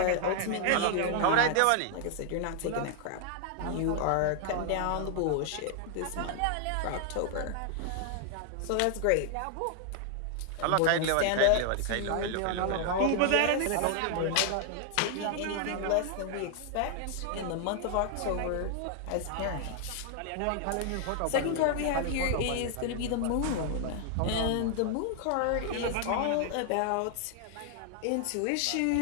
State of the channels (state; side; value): different; both; correlation 0.00